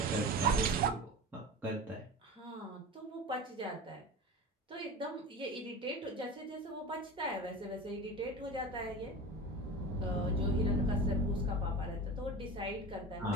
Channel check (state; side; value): normal; both; correlation 0.31